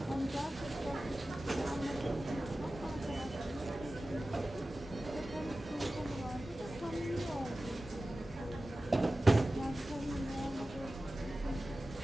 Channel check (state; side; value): normal; both; correlation 0.95